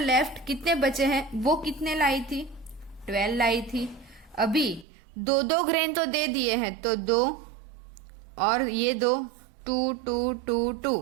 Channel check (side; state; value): left; drops out; at 4.9 s